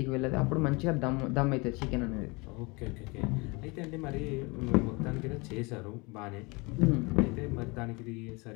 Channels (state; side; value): quieter; right; 27.2 dB